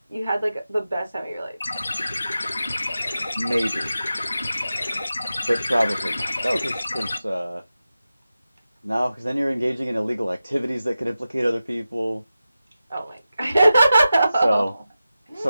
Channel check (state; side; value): inverted; both; correlation -0.93